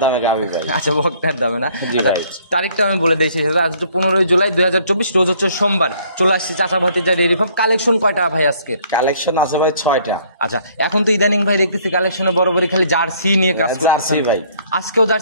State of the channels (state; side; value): inverted; both; correlation -0.61